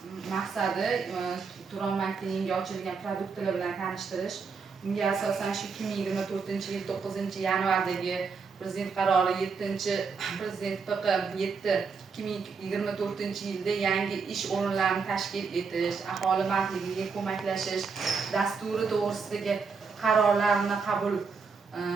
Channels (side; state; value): left; quieter; 5.2 dB